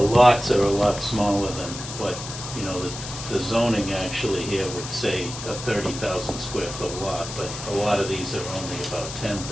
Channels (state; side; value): noise; left; hiss, 9 dB below the sound